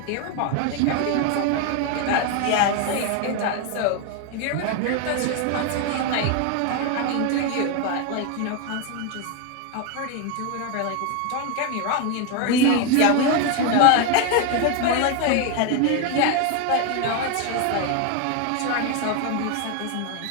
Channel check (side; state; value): both; different; correlation 0.01